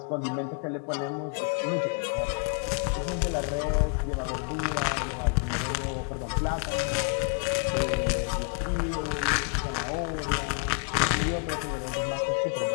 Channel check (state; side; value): quieter; right; 38.0 dB